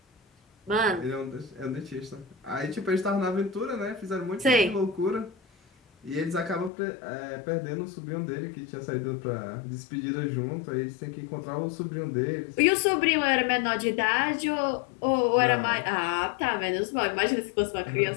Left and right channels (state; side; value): drops out; right; at 6.7 s